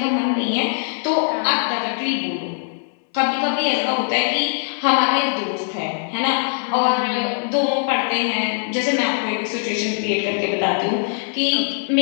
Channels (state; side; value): silent; right; digital silence